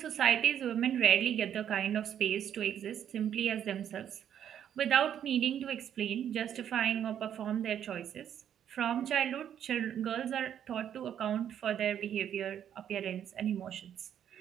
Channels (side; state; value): left; quieter; 9.6 dB